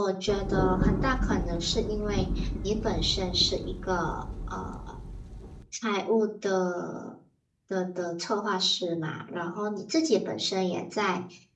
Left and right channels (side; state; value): both; identical; correlation 1.00